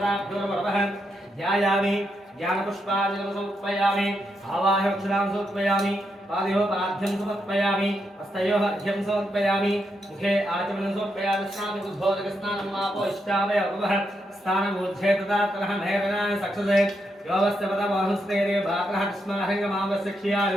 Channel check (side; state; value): both; normal; correlation 0.82